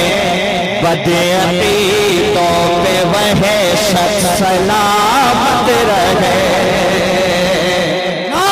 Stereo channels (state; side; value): identical; both; correlation 1.00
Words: बदअकीदों पे वह शख्स सलामत रहे।